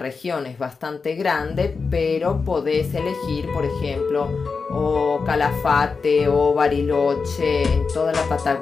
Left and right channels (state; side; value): quieter; right; 4.8 dB